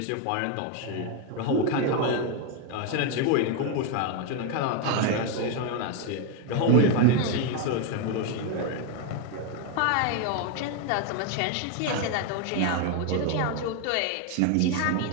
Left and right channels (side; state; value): both; different; correlation 0.01